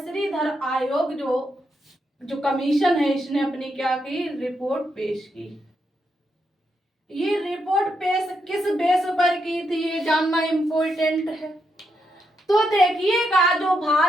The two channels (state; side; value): normal; both; correlation 0.81